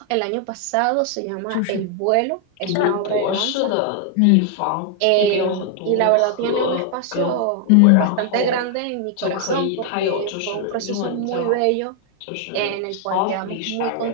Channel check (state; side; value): different; both; correlation 0.00